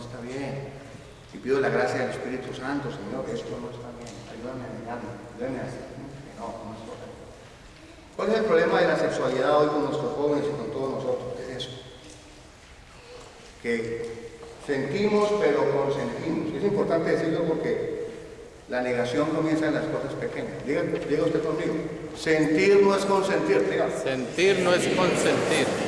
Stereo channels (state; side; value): identical; both; correlation 1.00